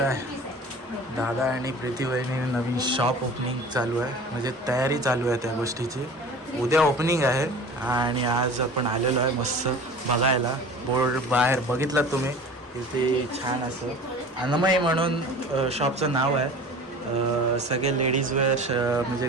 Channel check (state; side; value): normal; both; correlation 0.40